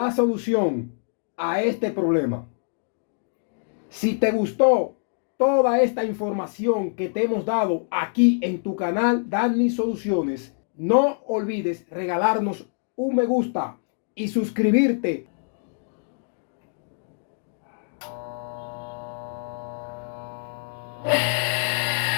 solución a este problema. Si te gustó toda esta información que te hemos dado aquí en tu canal Danny Soluciones, no olvides regalarnos un me gusta y suscribirte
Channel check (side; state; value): right; silent; digital silence